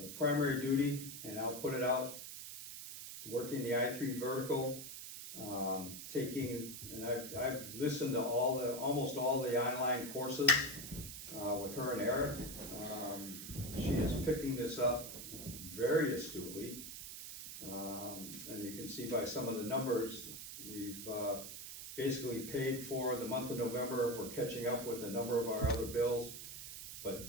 the primary duty, and I'll put it out, working the I-3 vertical, taking, and I've listened to almost all the online courses, with her and Eric. She is picking this up very astutely. And you can see by some of the numbers, we've, basically paid for the month of November. We're catching up with a number of our other bills. But,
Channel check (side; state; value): right; noise; hiss, 9 dB below the sound